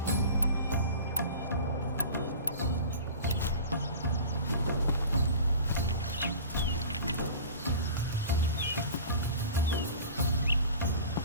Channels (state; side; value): inverted; both; correlation -0.39